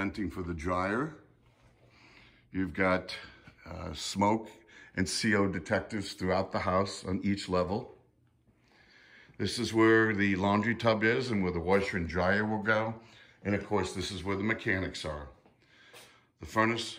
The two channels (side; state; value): both; identical; correlation 1.00